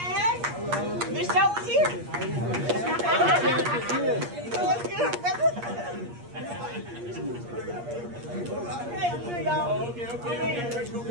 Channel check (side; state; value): left; late; 8.5 ms